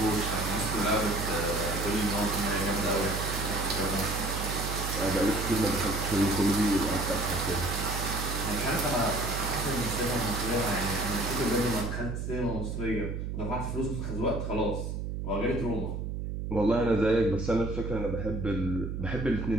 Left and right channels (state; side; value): noise; right; hum, 4 dB below the sound